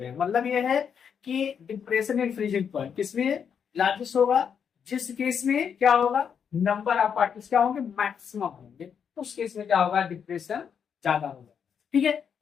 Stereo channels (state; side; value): quieter; right; 7.3 dB